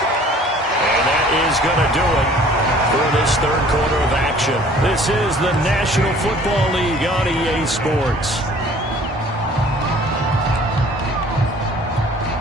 And that is going to do it for this 3rd quarter of action. This is the National Football League on EA Sports.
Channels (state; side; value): normal; both; correlation 0.52